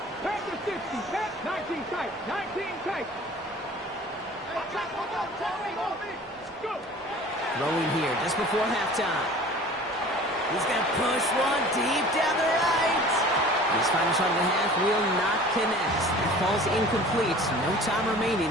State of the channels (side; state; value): both; normal; correlation 0.44